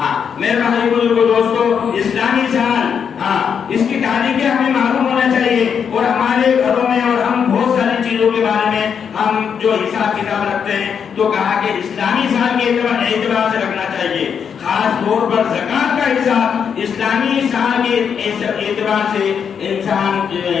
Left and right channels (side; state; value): right; quieter; 7.2 dB